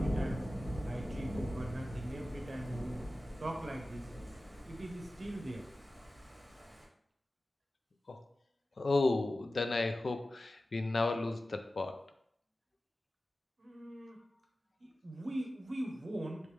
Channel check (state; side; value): normal; both; correlation 0.95